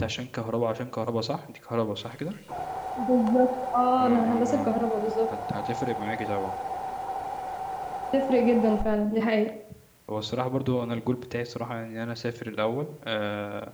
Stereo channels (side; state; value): both; identical; correlation 1.00